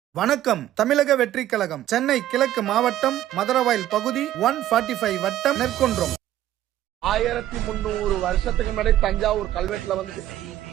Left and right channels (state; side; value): quieter; left; 13.1 dB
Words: வணக்கம். தமிழக வெற்றி கழகம் சென்னை கிழக்கு மாவட்டம் மதுரவாயல் பகுதி 145 வட்டம் நெற்குன்றம். 1300 வருஷத்துக்கு முன்னாடி தஞ்சாவூர் கல்வெட்டுல வந்து